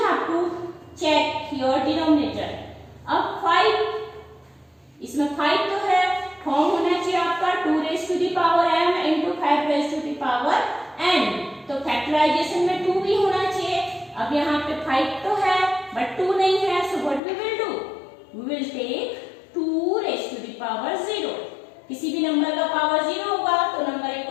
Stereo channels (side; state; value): right; drops out; at 17.2 s